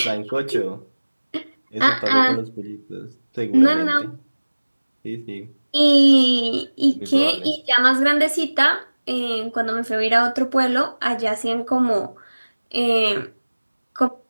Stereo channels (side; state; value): both; inverted; correlation -1.00